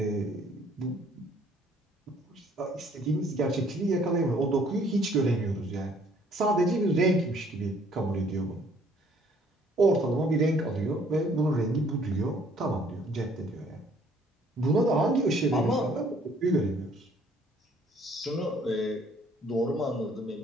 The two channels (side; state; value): both; normal; correlation 0.61